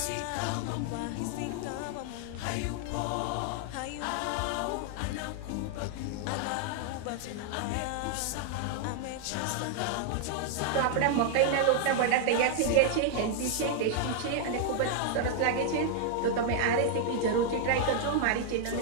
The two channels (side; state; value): both; different; correlation 0.00